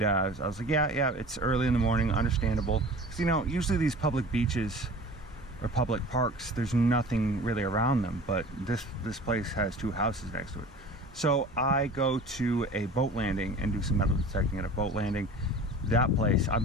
I was like, yeah, it's early in the morning, understandable. Because, usually these public beaches or public parks, there's nothing really around them, but this place has two houses next to it. So I go to a boat landing and do some metal detecting at a boat landing. That place,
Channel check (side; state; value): both; normal; correlation 0.41